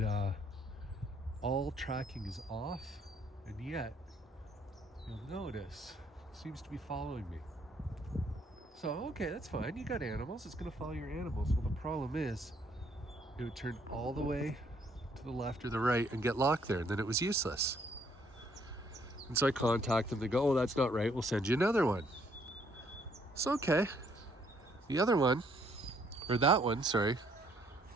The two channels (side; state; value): both; normal; correlation 0.67